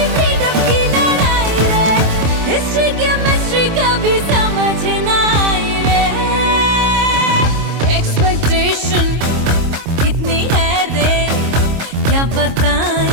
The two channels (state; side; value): late; left; 26 ms